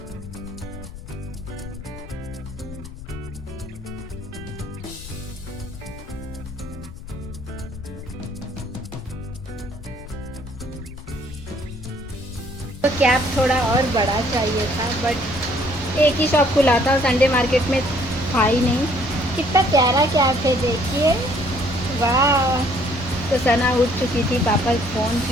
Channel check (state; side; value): noise; left; rumble, 14 dB below the sound